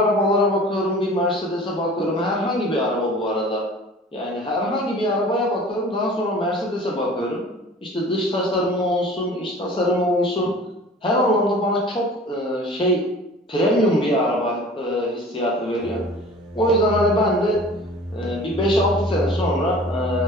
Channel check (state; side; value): normal; both; correlation 0.44